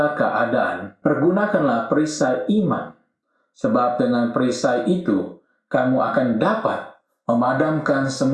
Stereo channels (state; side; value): identical; both; correlation 1.00